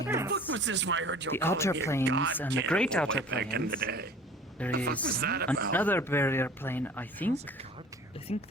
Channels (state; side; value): normal; both; correlation 0.45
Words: the planes. fuck was this where I heard you the calling outer me a planes god and the cannibal great way outer back in the planes. day? There The fuck was is that about? another barrier plane, I think. How's a god I cannibal? think